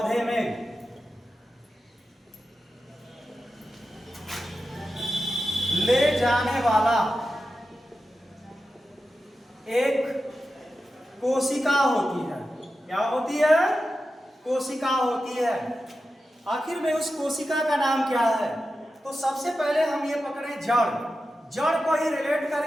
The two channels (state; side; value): normal; both; correlation 0.91